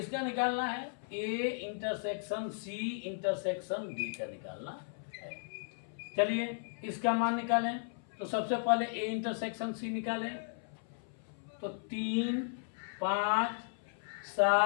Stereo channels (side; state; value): right; silent; 54 dB below the other